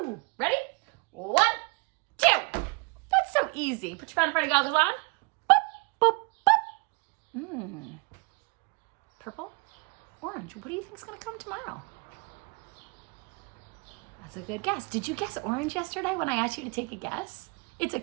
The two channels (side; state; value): left; quieter; 29.8 dB